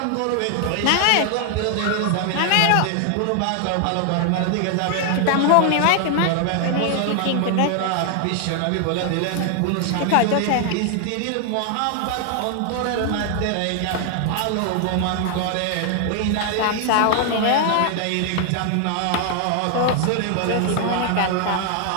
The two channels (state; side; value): different; both; correlation 0.00